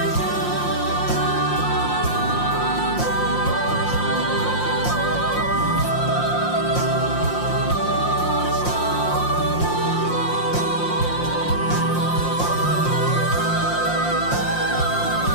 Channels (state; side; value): late; right; 5.7 ms